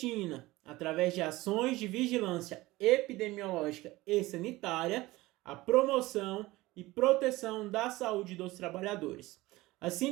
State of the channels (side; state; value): left; quieter; 19.4 dB